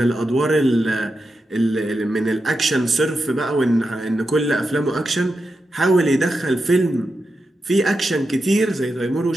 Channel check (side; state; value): both; normal; correlation 0.88